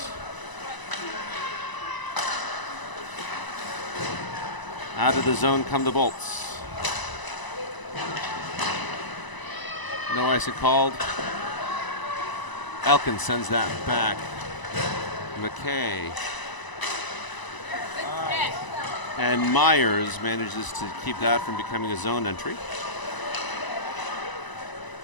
Out of the zone come the Bolts. No icing called. Elkins sends that back. McKay. And Myers manages to keep that from becoming a zone entry.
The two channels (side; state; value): right; late; 1.0 ms